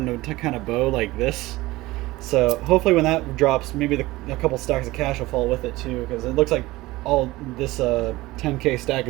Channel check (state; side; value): quieter; left; 19.2 dB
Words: to kind of bow like this. So hopefully when that drops, maybe a couple stacks of cash will fall with it too, because it looks like all this 10K stack